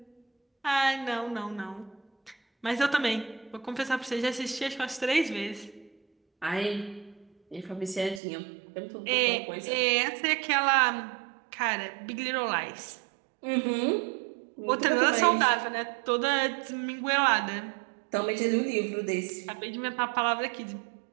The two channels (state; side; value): drops out; left; at 8.2 s